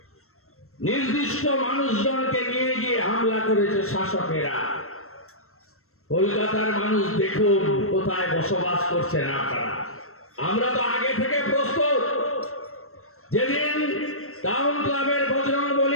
নির্দিষ্ট মানুষজনকে নিয়ে গিয়ে হামলা করেছে শাসকেরা। কলকাতার মানুষ দেখুন কোথায় বসবাস করছেন আপনারা। আমরা তো আগে থেকে প্রস্তুত। যেদিন টাউন ক্লাবের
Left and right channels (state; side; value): late; right; 0.63 ms